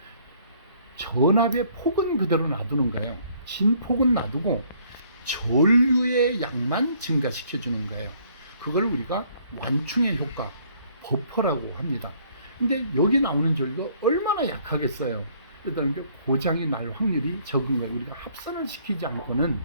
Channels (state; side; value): inverted; both; correlation -0.62